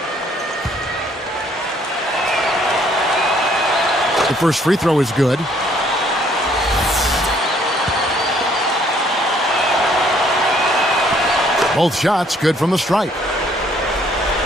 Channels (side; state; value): both; normal; correlation 0.63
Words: The first free throw is good. Both shots good from the stripe.